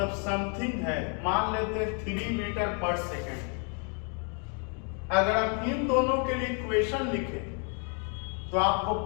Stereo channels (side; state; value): right; quieter; 39.4 dB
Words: समथिंग है, मान लेते 3 मीटर पर सेकेंड। अगर आप इन दोनों के लिए इक्वेशन लिखें तो आपको